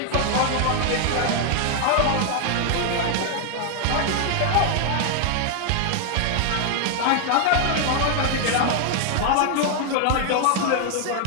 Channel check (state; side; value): different; both; correlation 0.00